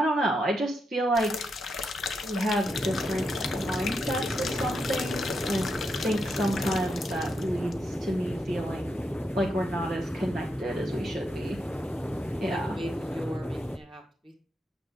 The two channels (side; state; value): both; normal; correlation 0.83